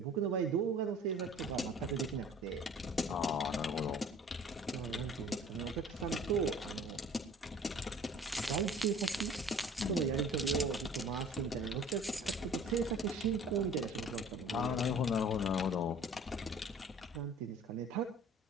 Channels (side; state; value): both; normal; correlation 0.48